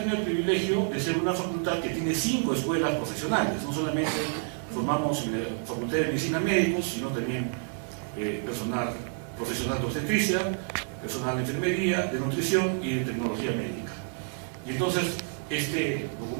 el privilegio de ser una facultad que tiene 5 escuelas profesionales. No solamente formamos en la Facultad de Medicina médicos, sino también personal profesional de obstetricia, personal de enfermería, de nutrición y de tecnología médica. Y entonces, este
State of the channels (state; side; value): silent; left; 58 dB below the other